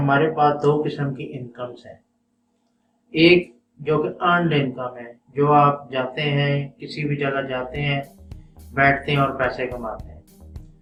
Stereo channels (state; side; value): identical; both; correlation 1.00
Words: पास दो किस्म की इनकम्स हैं। एक जो कि अर्नड इनकम है, जो आप जाते हैं, किसी भी जगह जाते हैं, बैठते हैं और पैसे कमाते हैं,